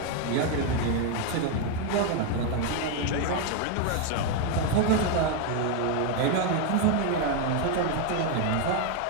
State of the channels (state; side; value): different; both; correlation 0.01